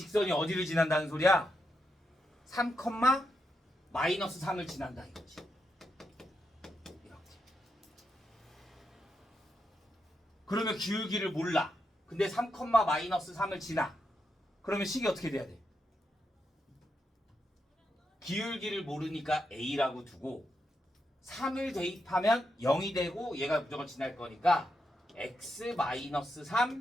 어디를 지난다는 소리야? 3, 마이너스 3을 지난다 이거지. 이렇게. 그러면 기울기를 몰라. 근데 3, 마이너스 3을 지나. 그러면 식이 어떻게 돼야 돼? 기울기를 모르니까 A라고 두고 3을 대입하면 0이 되고 얘가 무조건 지날 거니까 X 마이너스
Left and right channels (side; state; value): both; normal; correlation 0.83